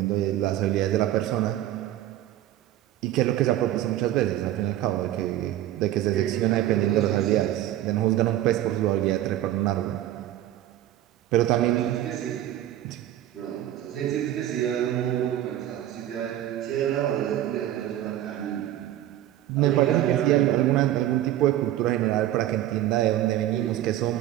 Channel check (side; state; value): left; quieter; 13.2 dB